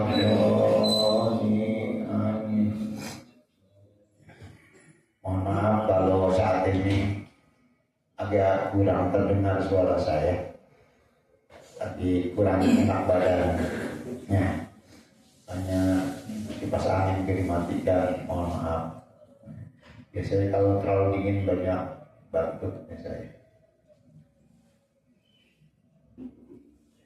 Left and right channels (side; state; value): both; identical; correlation 1.00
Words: Amin. Mohon maaf kalau saat ini agak kurang terdengar suara saya, tapi kurang enak badannya, hanya kipas angin dimatikan. Mohon maaf. Biasanya kalau terlalu dingin banyak batuk biasanya.